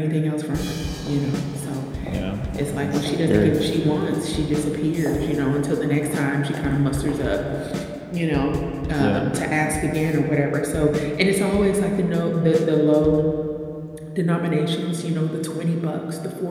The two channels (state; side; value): identical; both; correlation 1.00